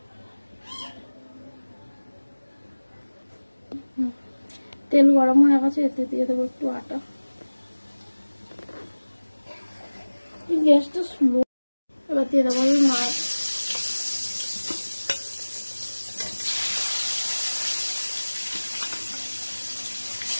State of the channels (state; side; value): inverted; both; correlation -1.00